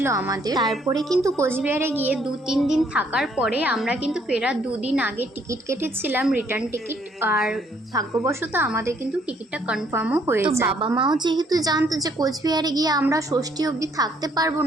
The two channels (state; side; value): normal; both; correlation 0.66